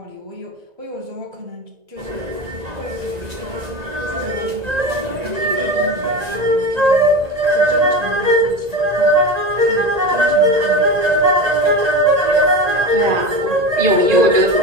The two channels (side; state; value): left; late; 1.9 ms